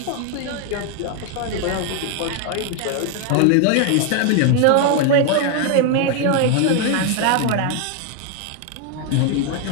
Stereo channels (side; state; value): both; different; correlation 0.01